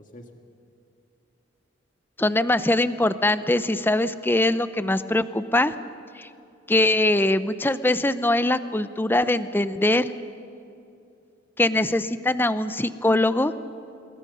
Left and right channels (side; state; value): both; normal; correlation 0.66